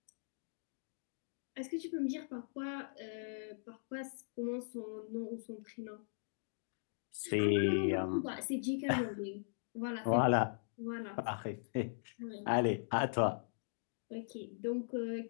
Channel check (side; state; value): right; silent; digital silence